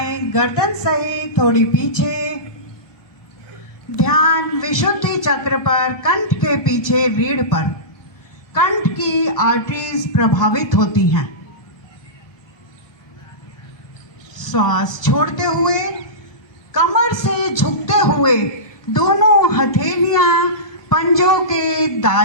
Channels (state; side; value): late; right; 1.2 ms